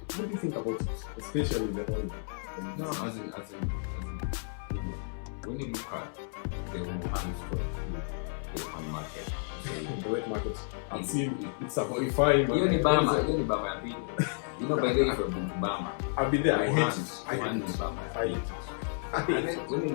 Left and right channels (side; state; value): right; silent; 57 dB below the other